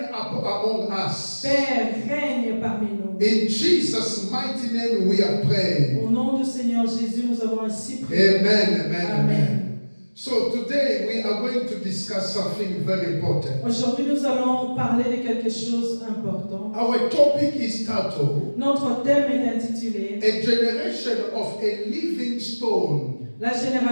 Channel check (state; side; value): inverted; both; correlation -1.00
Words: among us. Père, règne parmi nous. In Jesus' mighty name we are praying. Au nom du Seigneur Jésus, nous avons ainsi prié. Amen, amen, Amen. amen. So today we are going to discuss something very important. Aujourd'hui, nous allons parler de quelque chose d'important. Our topic is titled, Notre thème est intitulé A Generation of a Living Stone. La